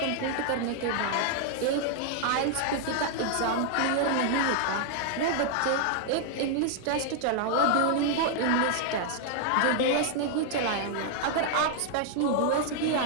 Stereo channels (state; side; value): different; both; correlation 0.00